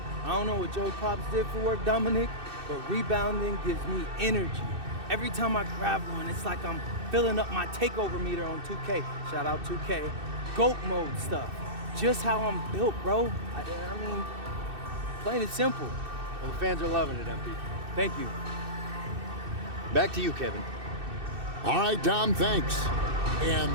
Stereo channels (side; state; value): left; late; 2.6 ms